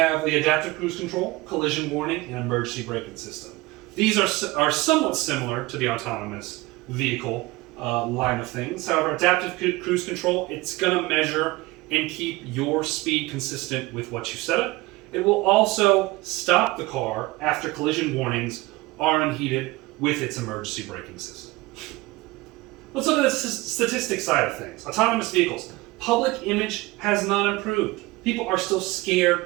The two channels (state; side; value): quieter; left; 21.2 dB